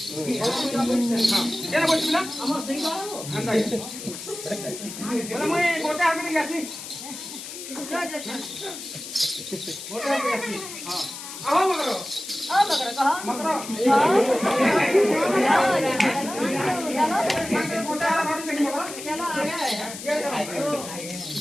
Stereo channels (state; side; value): noise; left; hiss, 10 dB below the sound